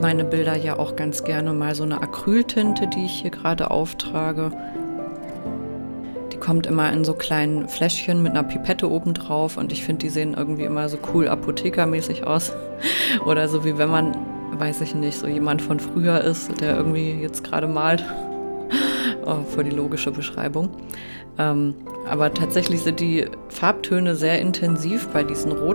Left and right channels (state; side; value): inverted; both; correlation -1.00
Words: Bilder ja auch ganz gerne mal so eine Acryltinte, die ich hier gerade auftrage. Die kommt immer in so kleinen Fläschchen mit einer Pipette oben drauf und ich finde, die sehen irgendwie immer so cool apothekermäßig aus. Oder so wie wenn man, weiß ich nicht, so jemand von früher ist, der irgendwie jetzt gerade malt. Oh, voll die logische Beschreibung. Aber tatsächlich sind die Farbtöne sehr intensiv bei diesen